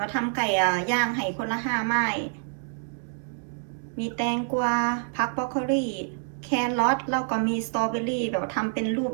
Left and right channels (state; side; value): silent; left; 59 dB below the other